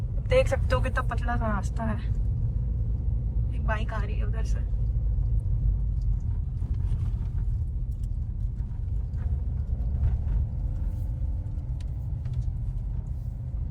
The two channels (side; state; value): both; identical; correlation 1.00